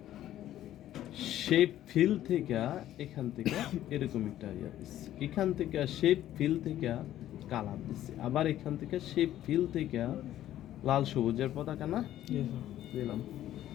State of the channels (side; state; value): right; quieter; 12.8 dB